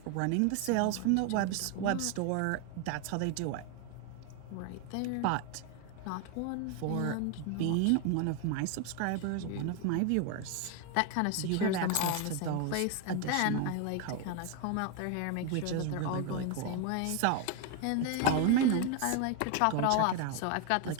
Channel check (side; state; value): both; different; correlation 0.01